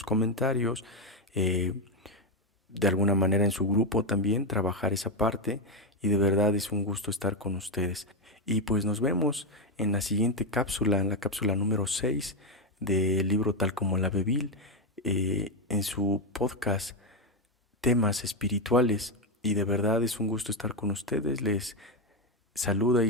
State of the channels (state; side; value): normal; both; correlation 0.06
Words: comentarios, eh, de alguna manera en su grupo también, trabajar esa parte. Y de verdad es un gusto estar con ustedes. Y pues nos vemos en la siguiente cápsula, en la cápsula número 6 del libro Tal como la Bebil, en su podcast Temas Espirituales. Y de verdad es un gusto estar con ustedes. Les saluda